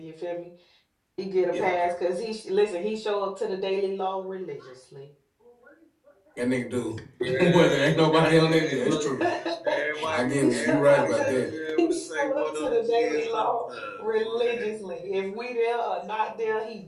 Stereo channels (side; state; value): both; identical; correlation 1.00